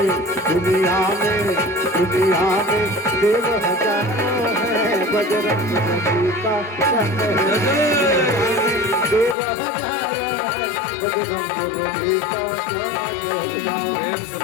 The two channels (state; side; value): drops out; right; at 9.3 s